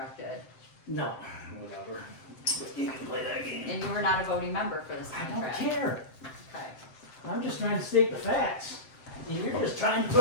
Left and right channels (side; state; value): right; late; 7.7 ms